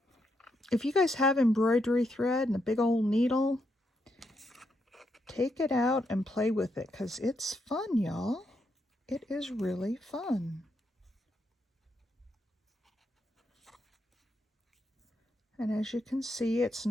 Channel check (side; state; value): both; normal; correlation 0.80